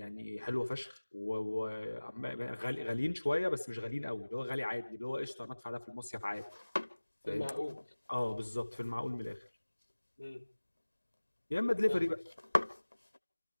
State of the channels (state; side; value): inverted; both; correlation -1.00